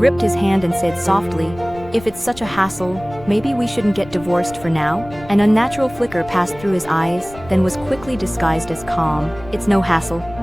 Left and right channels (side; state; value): left; noise; rumble, 18 dB below the sound